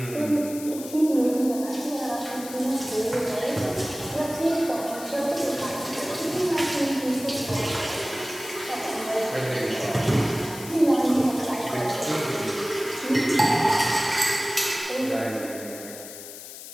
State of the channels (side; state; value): left; noise; hiss, 13 dB below the sound